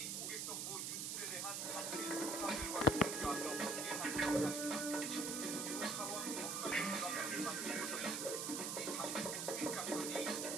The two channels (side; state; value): right; noise; hiss, 2 dB below the sound